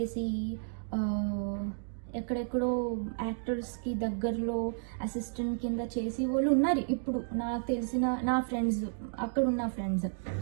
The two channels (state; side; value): silent; left; digital silence